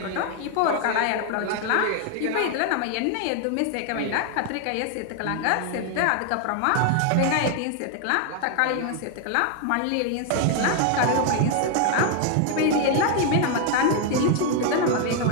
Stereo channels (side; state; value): both; different; correlation 0.00